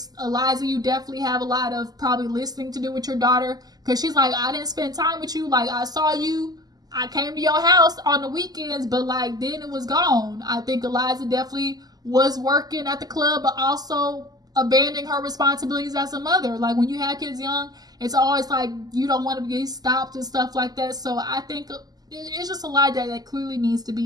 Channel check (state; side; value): late; left; 0.19 ms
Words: Eliza, you definitely have a lot of probably listening to do with your daughter. Because she's like, I didn't spend time with you. Like, I saw you. I came to your house on the weekends, but, like, then it was gone. I think Eliza definitely was working at the club, but also abandoning her responsibilities as a mother. Like, when you have kids young, it's always like you don't want to get stopped and stuff like that. So I think it's just a lot that clearly needs to